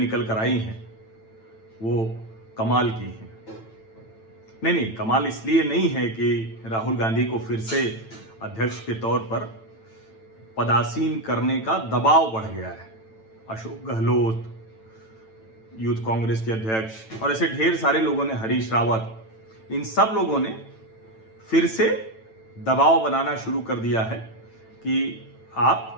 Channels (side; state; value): right; late; 9.0 ms